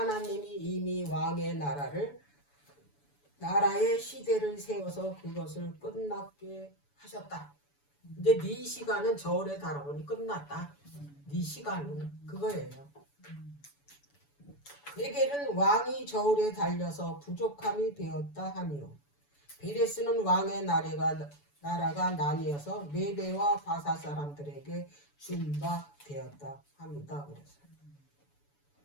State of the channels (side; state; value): right; late; 7.0 ms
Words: 이미 왕의 나라의 시대를 세워서 그것을 끝났게 하셨다. 이제 네 시간은 저울에 달아보니 끝났다. 네 시간은 그거예요. 베겔은 왕이 저울에 달려서 부족함이 되었다 하니요. 베레스는 왕의 나라가 나뉘어서 메대와 바사 사람들에게 준 바 되었다 합니다. 그래서